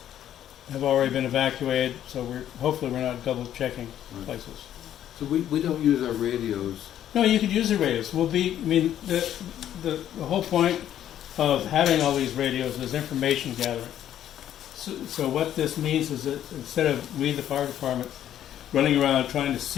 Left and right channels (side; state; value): right; quieter; 11.1 dB